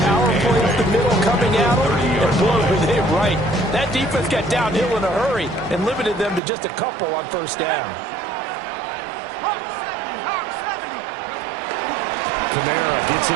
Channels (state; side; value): drops out; left; at 6.4 s